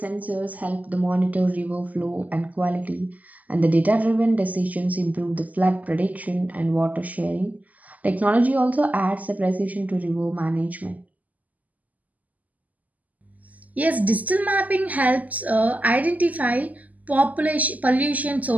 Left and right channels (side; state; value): left; late; 0.078 ms